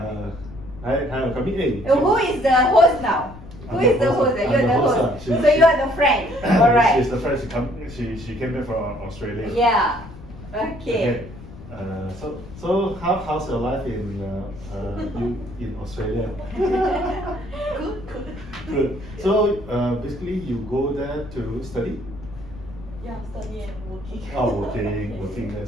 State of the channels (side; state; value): left; noise; rumble, 16 dB below the sound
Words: Hi, come in. Who is the host now? Who is the host? You're the host. So you are the friend. Alright. She's the friend. She came back from Australia. Yeah. Okay. So how's your life in Australia? Good. Good. So basically, you go there to study. Yeah, study and working. Oh, working there.